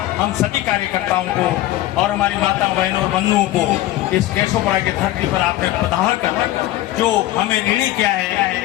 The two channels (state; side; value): quieter; right; 15.3 dB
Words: हम सभी कार्यकर्ताओं को और हमारी माता बहनों और बंधुओं को इस केशवपुरा की धरती पर आपने पधार कर जो हमें ऋणी किया है,